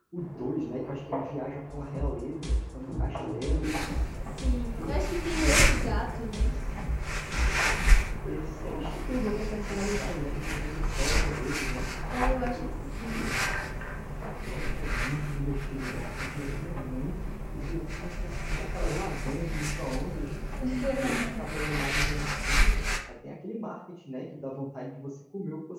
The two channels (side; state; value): both; identical; correlation 1.00